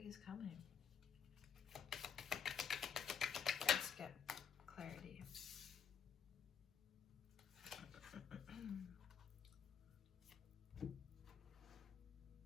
is coming. Let's get clarity.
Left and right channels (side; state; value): right; quieter; 7.2 dB